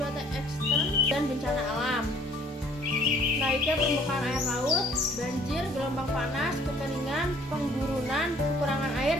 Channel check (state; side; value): normal; both; correlation 0.56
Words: ekstrem dan bencana alam, naiknya permukaan air laut, banjir, gelombang panas, kekeringan, penggurunan, kekurangan air,